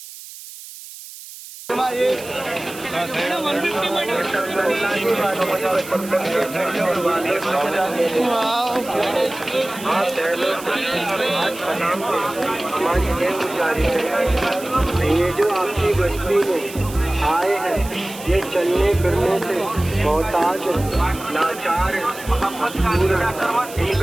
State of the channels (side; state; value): right; noise; hiss, 15 dB below the sound